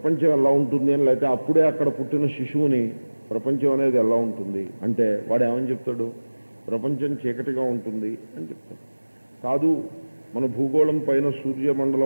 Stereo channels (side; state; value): both; inverted; correlation -1.00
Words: ఎలా ఉంటుంది అని, లేకపోతే అప్పుడే అక్కడ పుట్టిన శిశువుని ప్రపంచం అనేది ఎలా ఉంటుంది అంటే వాడు ఏమని చెప్తాడు? ప్రపంచం చీకటిగా ఉంటుంది అని చెప్తాడు. కాదు, మన భూగోళం పైన